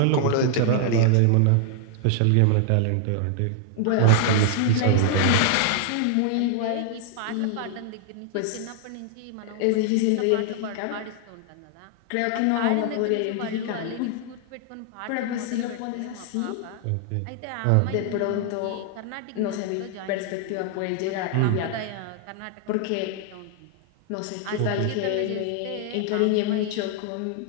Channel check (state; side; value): different; both; correlation 0.00